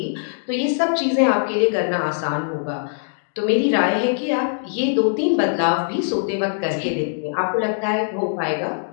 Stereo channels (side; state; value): right; silent; digital silence